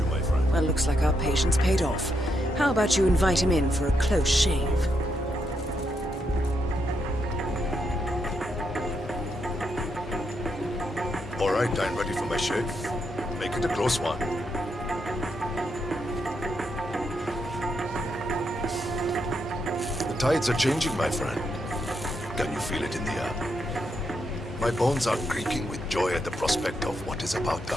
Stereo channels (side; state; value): both; normal; correlation 0.80